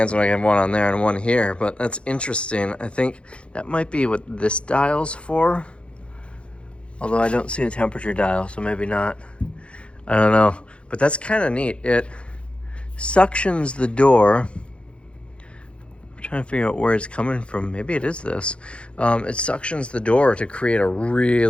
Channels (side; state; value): right; late; 0.059 ms